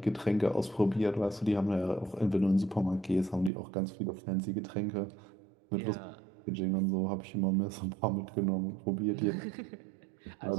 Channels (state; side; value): drops out; left; at 3.5 s